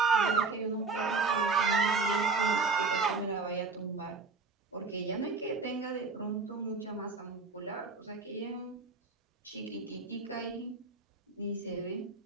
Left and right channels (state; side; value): quieter; left; 4.4 dB